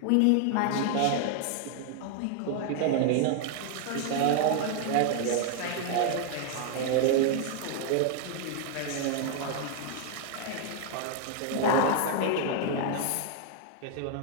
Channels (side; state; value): both; different; correlation 0.00